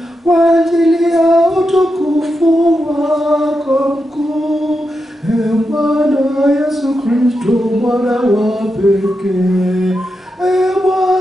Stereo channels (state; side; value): normal; both; correlation 0.87